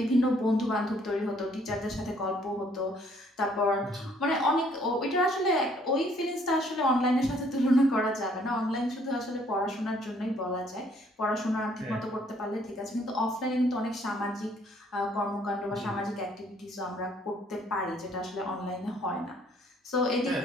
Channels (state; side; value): normal; both; correlation 0.63